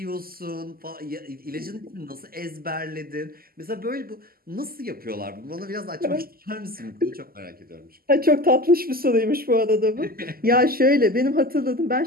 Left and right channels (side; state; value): left; late; 0.43 ms